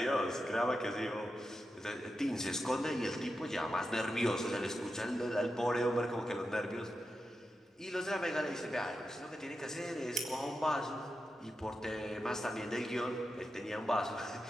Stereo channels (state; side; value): normal; both; correlation 0.89